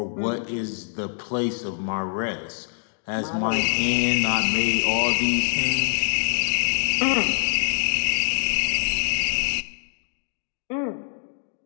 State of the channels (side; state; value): right; silent; digital silence